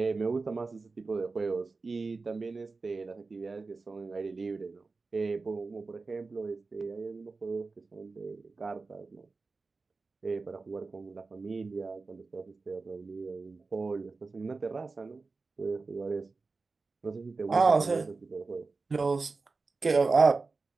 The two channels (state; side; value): quieter; left; 4.0 dB